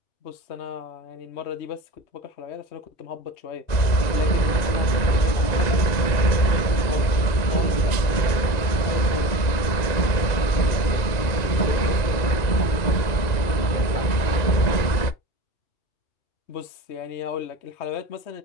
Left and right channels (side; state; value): right; late; 2.0 ms